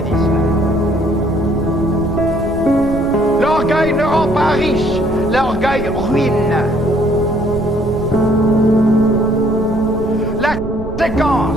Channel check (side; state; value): right; noise; rumble, 10 dB below the sound